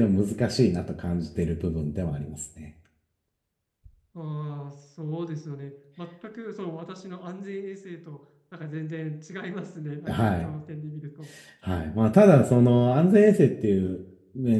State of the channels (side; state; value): both; identical; correlation 1.00